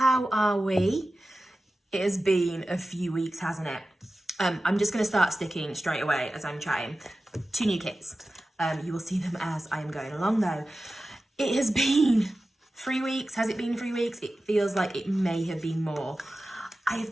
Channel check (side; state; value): both; normal; correlation 0.94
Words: are we? It has been a few weeks, hasn't it? I'm just going to start sticking straight away as I'm chatting. 2 new kits. You will see them as I'm going along though. It has been 3 weeks. Has it been 3 weeks? It feels like it may have been more. I